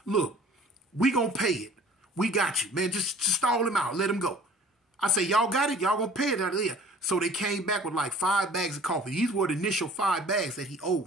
Look, we gonna pay it. We got you, man. Just stall him out. Let him go. I say, y'all got it? Y'all gonna pay it out of there. So they came back with like 5 bags of coffee. These were the initial 5 bags that he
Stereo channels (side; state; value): both; normal; correlation 0.49